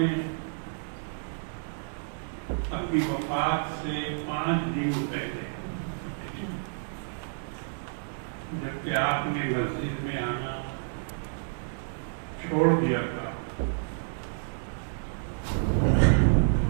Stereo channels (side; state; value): left; silent; digital silence